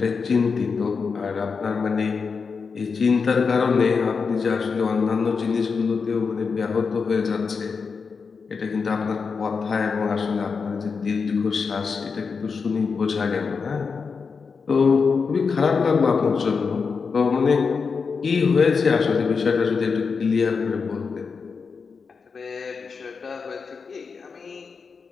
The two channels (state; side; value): quieter; right; 5.3 dB